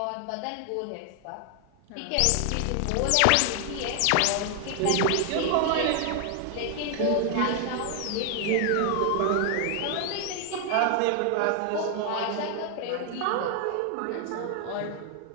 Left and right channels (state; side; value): different; both; correlation 0.00